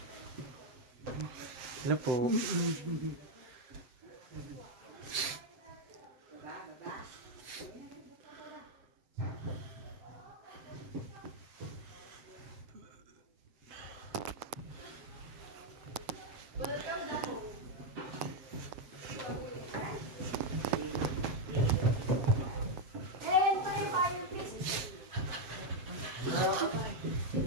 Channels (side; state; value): left; late; 7.7 ms